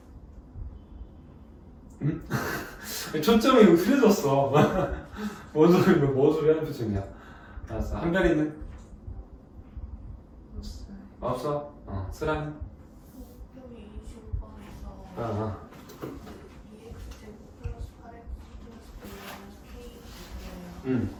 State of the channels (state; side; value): identical; both; correlation 1.00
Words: 응? 초점이 흐려졌어. 뭔 소리 하는 표정이야. 알았어. 한별이는? 없어? 쓰라는?